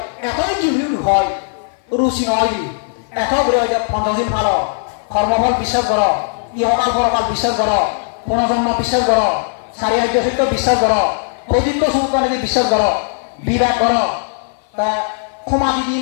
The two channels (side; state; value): right; silent; 55 dB below the other